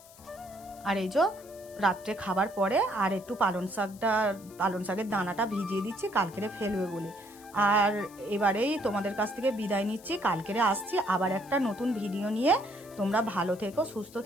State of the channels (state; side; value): noise; left; hiss, 22 dB below the sound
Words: আর এই যে রাত্রে খাবার পরে আর একটু পালং শাকের দানাটা ভিজিয়ে দিচ্ছি, কালকেরে ফেলবে বলে। আর এবারেই তোমাদের কাছ থেকে বিদায় নিচ্ছি, কালকেরে আসছি আবার একটা নতুন ভিডিও নিয়ে। তোমরা ভালো থেকো, সুস্থ